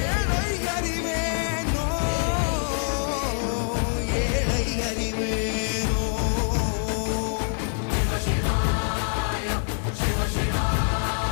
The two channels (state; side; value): silent; right; 60 dB below the other